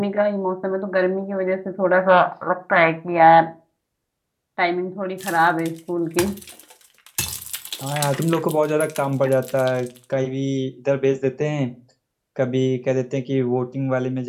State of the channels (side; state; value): both; identical; correlation 1.00